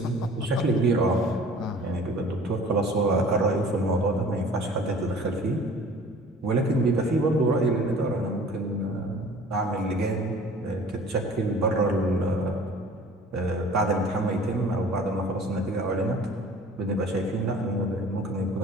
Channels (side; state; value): both; normal; correlation 0.47